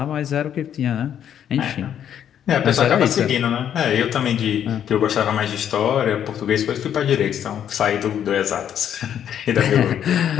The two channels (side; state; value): right; quieter; 9.5 dB